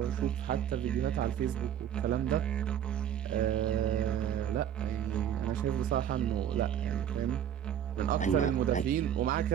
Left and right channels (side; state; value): left; quieter; 9.7 dB